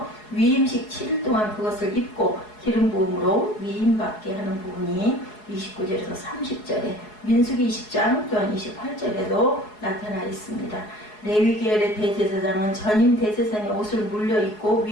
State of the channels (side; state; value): right; late; 4.7 ms